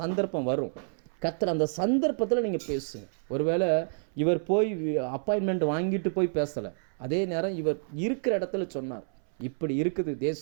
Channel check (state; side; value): silent; left; 59 dB below the other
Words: வரும். கர்த்தர் அந்த சந்தர்ப்பத்தில் நீங்கள் பேசுங்க. ஒருவேளை இவர் போய் அப்பாயின்மெண்ட் வாங்கிட்டு போய் பேசலை, அதே நேரம் இவர் இருக்கிற இடத்துல சொன்னார், இப்படி இருக்குது